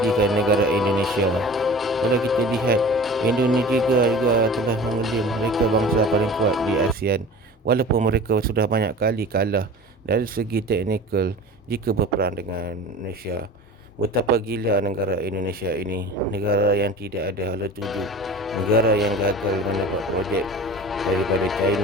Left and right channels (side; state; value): both; normal; correlation 0.38